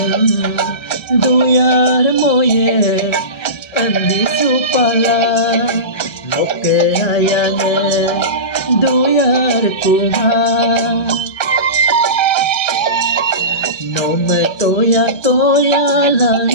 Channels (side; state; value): right; late; 1.3 ms